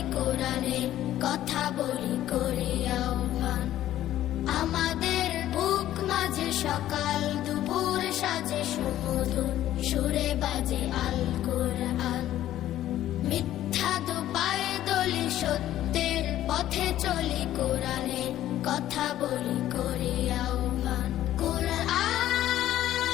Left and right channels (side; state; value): right; quieter; 13.0 dB